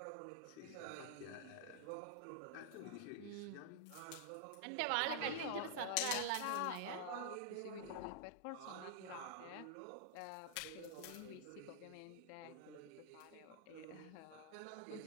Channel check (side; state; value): both; different; correlation -0.01